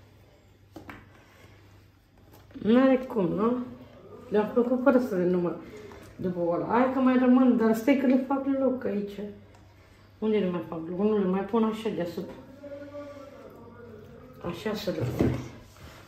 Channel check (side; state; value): both; identical; correlation 1.00